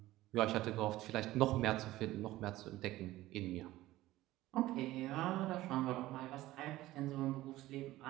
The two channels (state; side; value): quieter; left; 16.5 dB